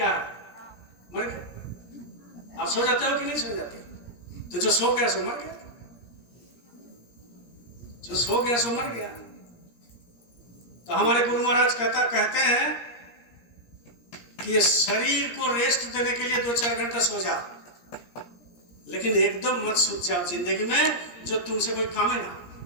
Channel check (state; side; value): late; right; 17 ms